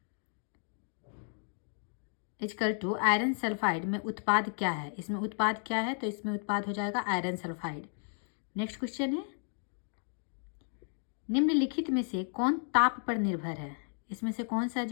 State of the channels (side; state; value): right; silent; 55 dB below the other